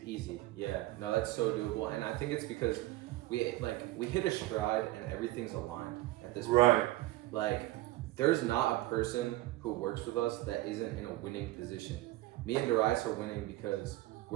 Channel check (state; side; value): quieter; left; 17.6 dB